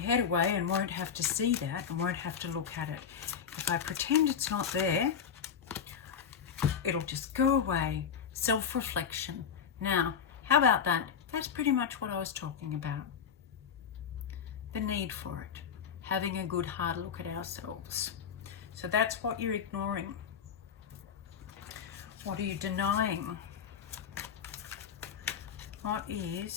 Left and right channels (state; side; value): quieter; right; 7.4 dB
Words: away and won't have to see that and won't have to look at it. If I pretend it's not there, it'll just go away. Self-reflection. Now, how about that? That's pretty much what I was talking about. The need for it. Having a good hard look at ourselves. So that's what you're ignoring. What are you denying? What